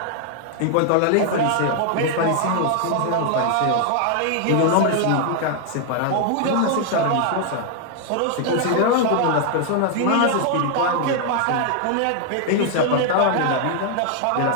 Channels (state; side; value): different; both; correlation 0.00